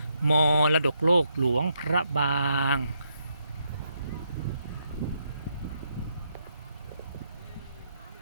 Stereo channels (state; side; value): inverted; both; correlation -0.78